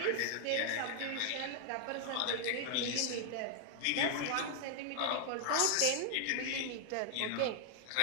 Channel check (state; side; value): different; both; correlation 0.00